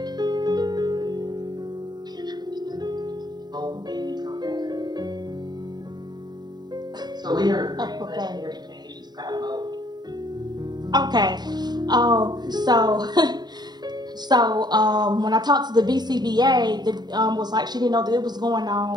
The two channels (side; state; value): left; late; 0.20 ms